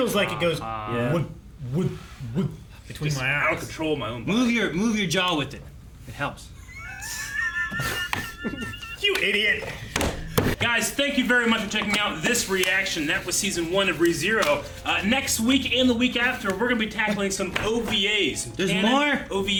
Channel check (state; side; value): identical; both; correlation 1.00